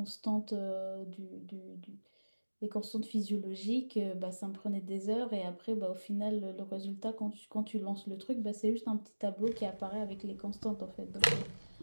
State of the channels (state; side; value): inverted; both; correlation -1.00